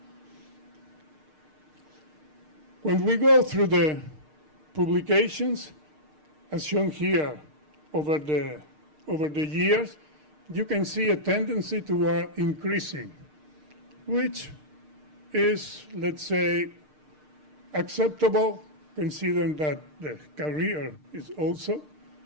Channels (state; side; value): late; left; 6.6 ms